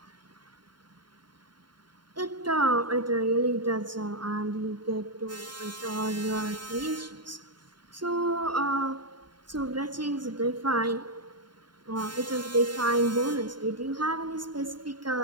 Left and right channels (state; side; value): late; left; 0.72 ms